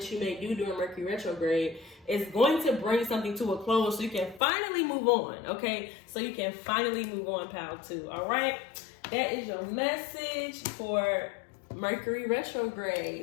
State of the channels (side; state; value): right; drops out; at 4.4 s